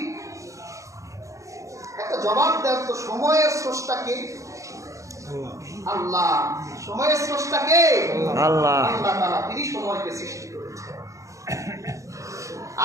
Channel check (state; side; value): late; left; 0.15 ms